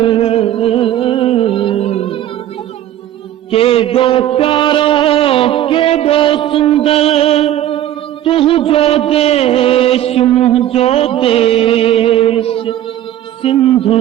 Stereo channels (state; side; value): quieter; left; 12.4 dB